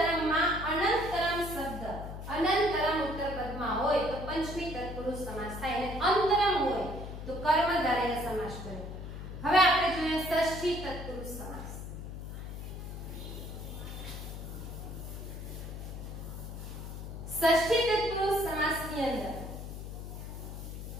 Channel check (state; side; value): noise; left; hum, 8 dB below the sound